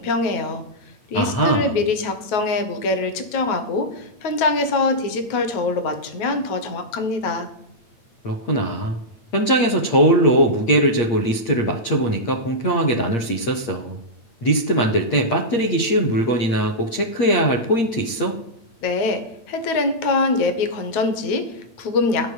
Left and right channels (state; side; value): late; right; 8.6 ms